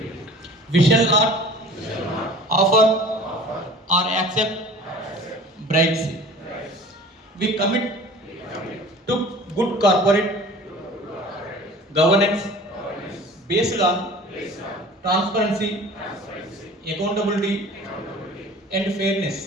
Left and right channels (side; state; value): both; normal; correlation 0.44